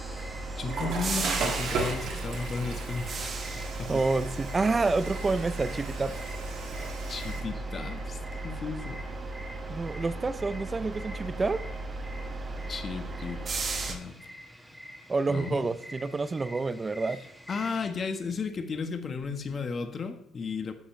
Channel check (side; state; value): both; normal; correlation 0.84